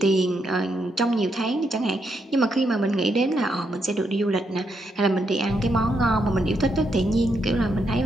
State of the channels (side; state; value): both; normal; correlation 0.79